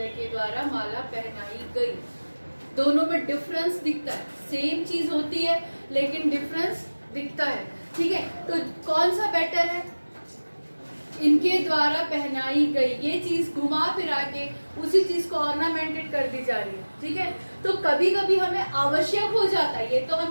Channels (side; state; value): both; inverted; correlation -1.00